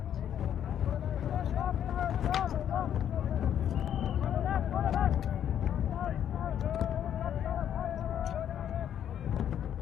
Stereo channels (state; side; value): quieter; right; 9.8 dB